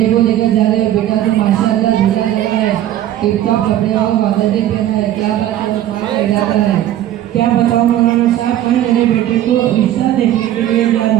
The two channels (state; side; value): quieter; left; 12.4 dB